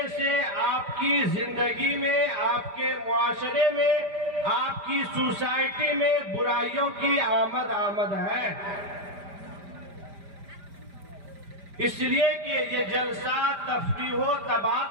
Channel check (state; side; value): late; left; 5.0 ms